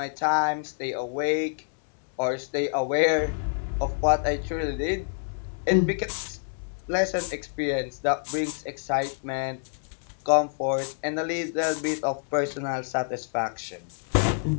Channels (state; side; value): silent; right; digital silence